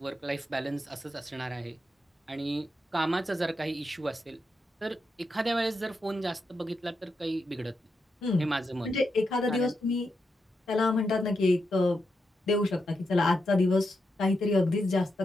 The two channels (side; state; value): both; normal; correlation 0.85